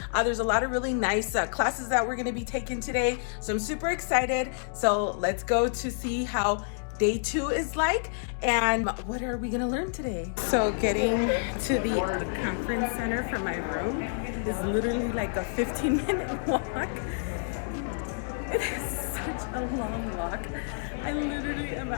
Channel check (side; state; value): right; silent; digital silence